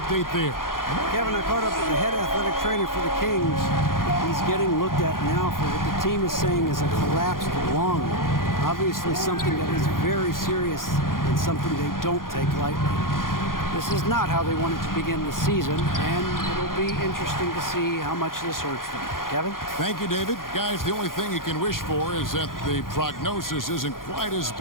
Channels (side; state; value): right; late; 0.91 ms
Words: there? Kevin, I caught up with the head athletic trainer for the Kings. He's getting looked at now for what the team is saying is a collapsed lung. Obviously something that is very serious and something they don't take lightly. This is not how they wanted to begin the season, and it'll be interesting to see how much this hurts them. Kevin? Thank you, David. Guys, the only thing you can wish for is that the prognosis isn't quite as